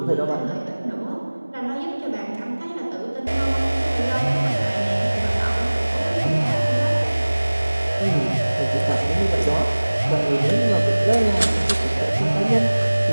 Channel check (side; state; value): both; inverted; correlation -1.00